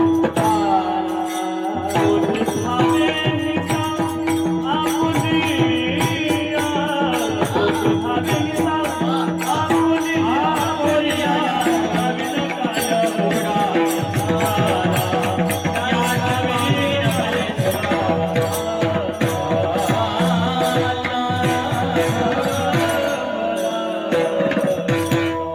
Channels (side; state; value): both; identical; correlation 1.00